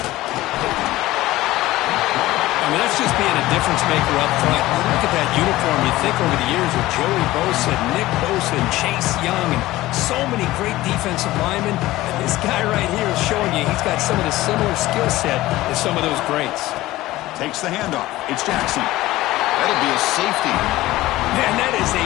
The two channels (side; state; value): right; quieter; 17.1 dB